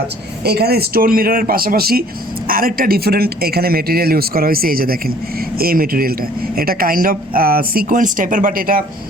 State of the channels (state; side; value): normal; both; correlation 0.55